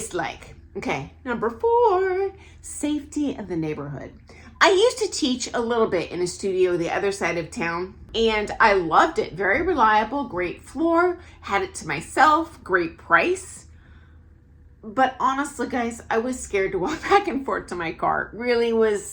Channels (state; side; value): identical; both; correlation 1.00